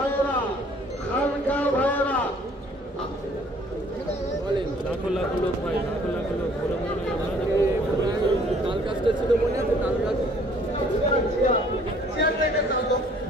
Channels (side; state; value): both; normal; correlation 0.58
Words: খানকা ভাইরা, লাখো লাখো লোক ভাই, লাখো লাখো লোক বলে মনে তাল কাজটা ছিল, মনে আছে তাল কাজ?